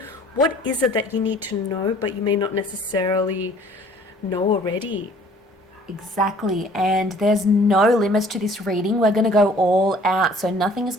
What is it that you need to know, but you may not necessarily know already? Exactly, and there's no limits to this reading. We're going to go all out, so nothing is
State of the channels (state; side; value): normal; both; correlation 0.54